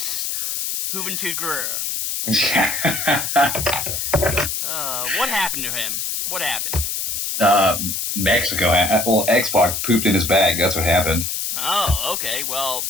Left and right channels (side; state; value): left; noise; hiss, 2 dB below the sound